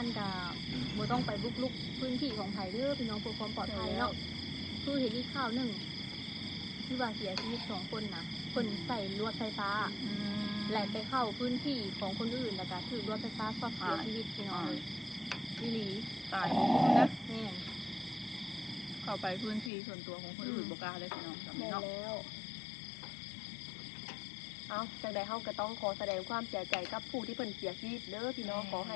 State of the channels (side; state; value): right; drops out; at 19.7 s